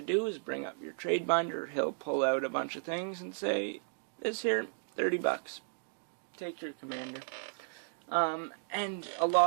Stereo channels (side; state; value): left; silent; digital silence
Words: do is bring up your trade binder. He'll pull out a bunch of things and say, this here, $30. Take your commander. And a